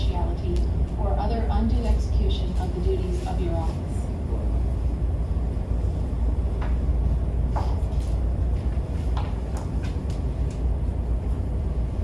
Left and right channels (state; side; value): identical; both; correlation 1.00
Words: or other undue execution of the duties of your office.